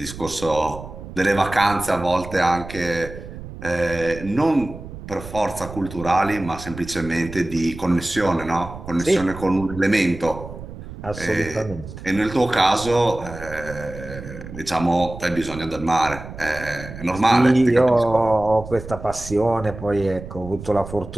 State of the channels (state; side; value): noise; right; rumble, 12 dB below the sound